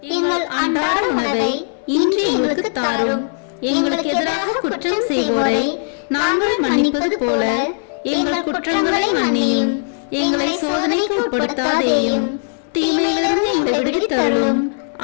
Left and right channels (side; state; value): right; silent; 65 dB below the other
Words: எங்கள் அன்றாட உணவை இன்று எங்களுக்கு தாரும். எங்களுக்கு எதிராக குற்றம் செய்வோரை நாங்கள் மன்னிப்பது போல எங்கள் குற்றங்களை மன்னியும். எங்களை சோதனைக்கு உட்படுத்தாதேயும், தீமையிலிருந்து எங்களை விடுவித்தருளும்.